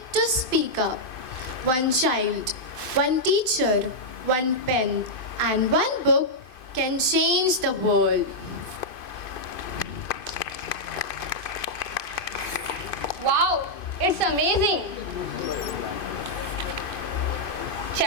to speak up. One child, one teacher, one pen, and one book can change the world. Wow, it's amazing.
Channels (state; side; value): late; right; 2.5 ms